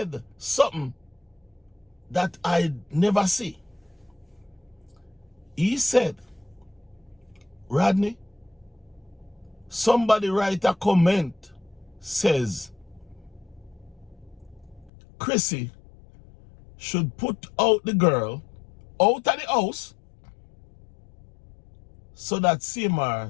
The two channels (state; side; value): drops out; right; at 14.9 s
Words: something that I never see. He said, Rodney, somebody write a comment, says, Chrissy should put out the girl out of the house so that CMR